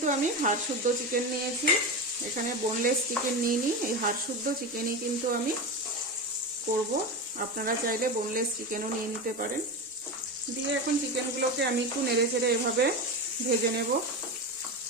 আমি হাড় শুদ্ধ চিকেন নিয়েছি, এখানে বোনলেস চিকেন নিইনি। এই হাড় শুদ্ধ চিকেনই কিন্তু আমি করব। আপনারা চাইলে বোনলেস চিকেনও নিয়ে নিতে পারেন। দিয়ে এখন চিকেনগুলোকে আমি একটু নেড়ে চেড়ে এভাবে ভেজে নেব।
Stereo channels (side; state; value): both; normal; correlation 0.20